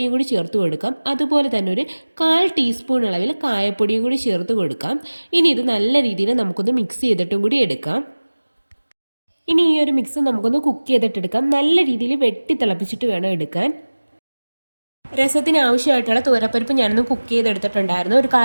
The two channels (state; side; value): inverted; both; correlation -1.00